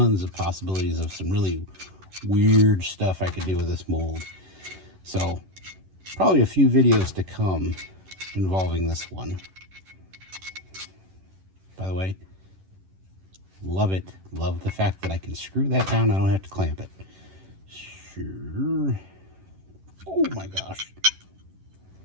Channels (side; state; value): left; late; 11 ms